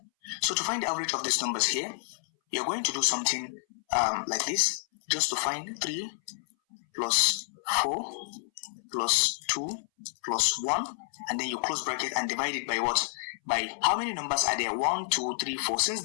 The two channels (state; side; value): silent; right; 58 dB below the other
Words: So to find the average of these numbers here, you're going to do something like this, just to find 3 plus 4 plus 2 plus 1, and then you close bracket and divide it by what? By how many numbers are there? 1, 2, 3, 4. Since